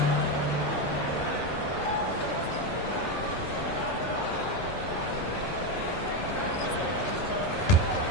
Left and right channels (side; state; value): right; late; 11 ms